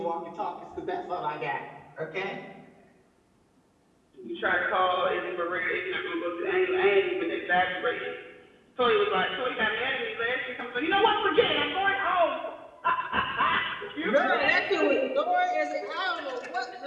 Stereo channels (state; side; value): identical; both; correlation 1.00